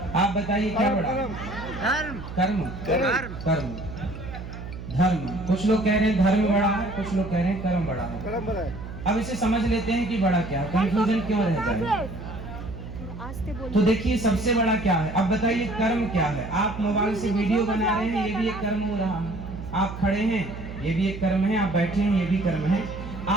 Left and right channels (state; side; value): noise; right; hum, 10 dB below the sound